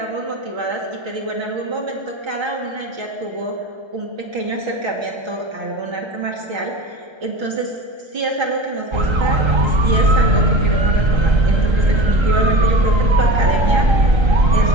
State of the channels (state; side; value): late; left; 1.3 ms